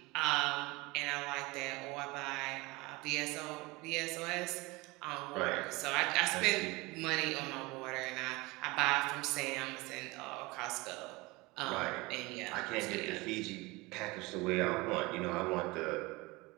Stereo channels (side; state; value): left; quieter; 23.3 dB